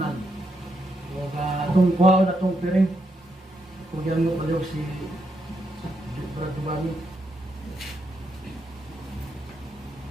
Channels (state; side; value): normal; both; correlation 0.80